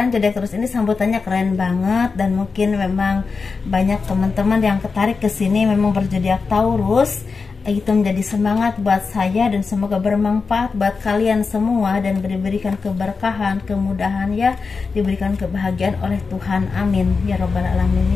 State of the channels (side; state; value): right; quieter; 4.7 dB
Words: zodiak Taurus ini sambutannya keren banget. Dan mungkin memang banyak teman-teman yang tertarik ke sini memang berzodiak Taurus. Itu menjadi semangat buat saya, dan semoga bermanfaat buat kalian semua, dan diberikan keberkahan, kemudahan ya, diberikan kebahagiaan oleh Tuhan, amin ya robbal